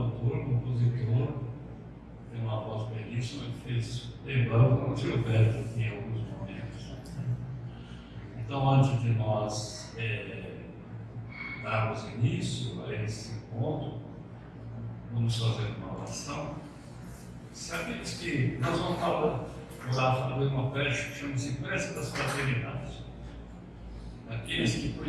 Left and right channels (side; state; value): both; identical; correlation 1.00